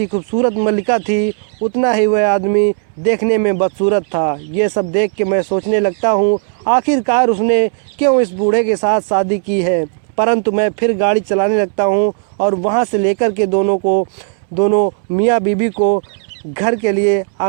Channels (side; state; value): left; silent; digital silence